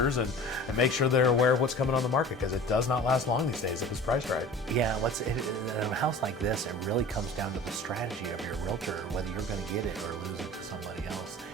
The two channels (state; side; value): normal; both; correlation 0.41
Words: and make sure they're aware of what's coming on the market, because it does not last long these days if it's priced right. Yeah, in a house like this, it really comes down to the strategy of your realtor, whether you're going to get it or lose it to somebody else.